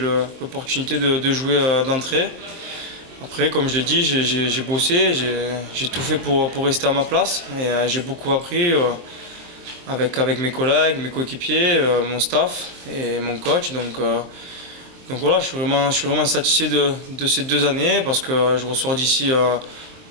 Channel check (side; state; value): left; late; 23 ms